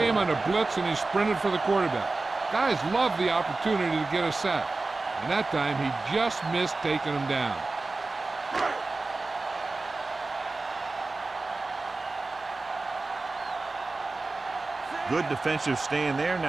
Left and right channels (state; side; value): quieter; left; 3.5 dB